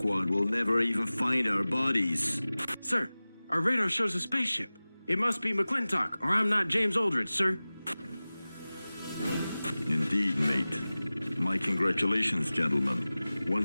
will never even find our bodies. Sir, our radar shows a spaceship. It must be McClintock, or I'm not James Oldridge, sir. Indeed, mate. My congratulations, gentlemen.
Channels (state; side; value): inverted; both; correlation -0.98